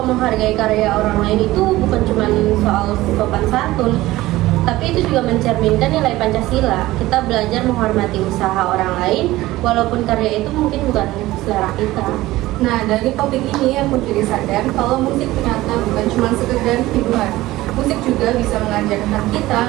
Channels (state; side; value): quieter; left; 17.4 dB